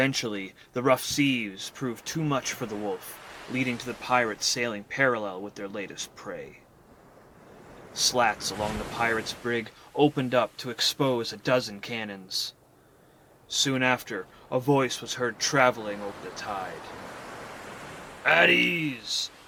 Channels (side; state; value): both; identical; correlation 1.00